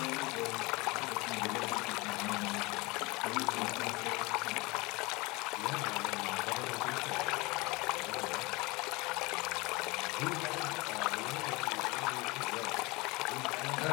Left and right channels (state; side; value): quieter; right; 24.6 dB